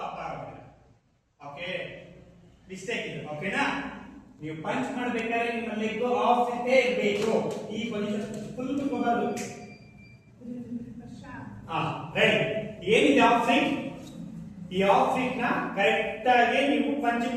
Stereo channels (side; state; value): both; identical; correlation 1.00